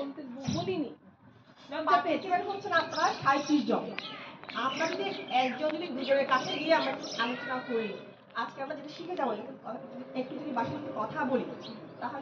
বলিনি। পার্টিসিপেন্ট হচ্ছেন আপনারা 37 জন। আমরা যদি একজন যদি দুজনের কাছে গিয়ে আমরা আলোচনা করি, আজকে আমরা যেটা শিখে যাবো একটু যদি বাসায় কথা বলি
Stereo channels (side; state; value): both; identical; correlation 1.00